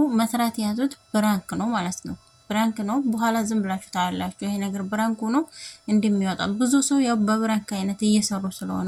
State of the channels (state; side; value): identical; both; correlation 1.00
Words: መስራት የያዙት ፕራንክ ነው ማለት ነው። ብራንክ ነው። በኋላ ዝም ብላችሁ ታያላችሁ። ይሄ ነገር ብራንክ ሆኖ እንደሚወጣ ብዙ ሰው ያው በብራንክ አይነት እየሰሩ